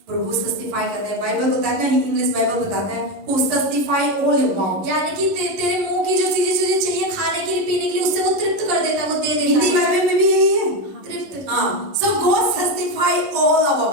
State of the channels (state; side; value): late; left; 11 ms